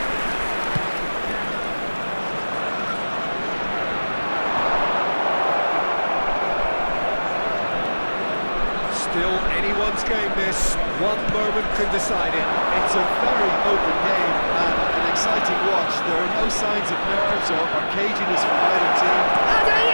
Still anyone's game this. One moment can decide it. It's a very open game and an exciting watch. There are no signs of nerves or caginess from either team. And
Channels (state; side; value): inverted; both; correlation -1.00